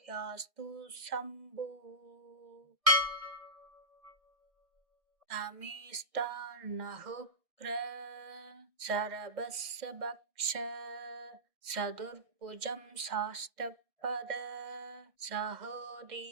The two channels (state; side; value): late; left; 1.6 ms